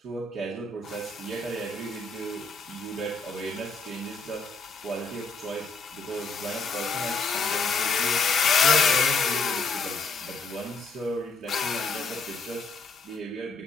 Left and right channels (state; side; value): quieter; right; 3.9 dB